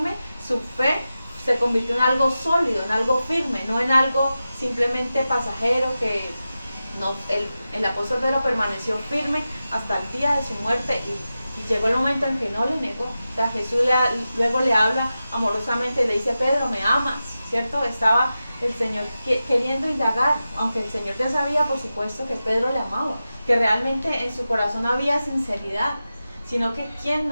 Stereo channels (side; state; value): both; inverted; correlation -0.93